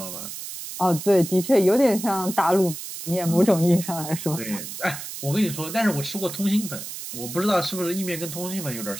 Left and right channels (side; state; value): right; noise; hiss, 9 dB below the sound